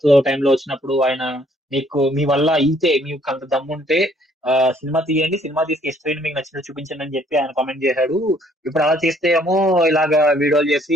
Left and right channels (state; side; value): normal; both; correlation 0.63